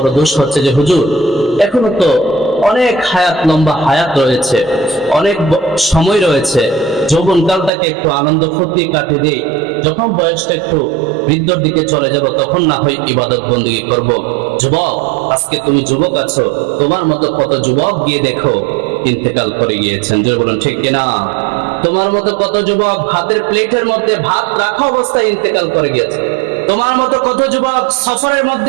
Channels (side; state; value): left; drops out; at 7.7 s